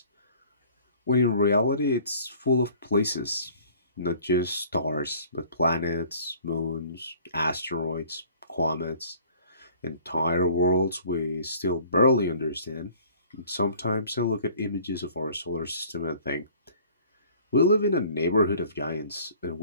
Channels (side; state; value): both; inverted; correlation -0.52